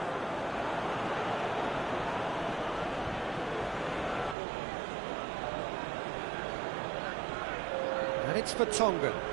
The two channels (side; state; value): left; drops out; at 4.4 s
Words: And it's for Tongan.